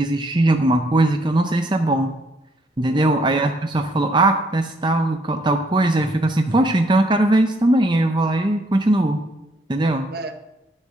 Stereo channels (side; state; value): both; normal; correlation 0.69